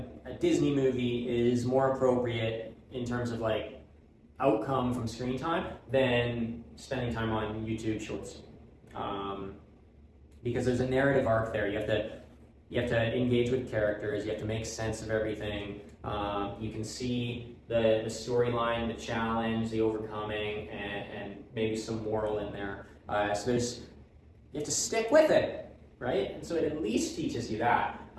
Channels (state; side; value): identical; both; correlation 1.00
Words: Disney movie is more appropriate in terms of like outcome from screen time than spending time on YouTube Shorts. Because there's a narrative arc there. You have to engage with characters. You have to make sense of everything. You can see the storyline, the challenge, the overcoming, and maybe some moral in there. So you have to stick with it, right? And so it at least teaches you that.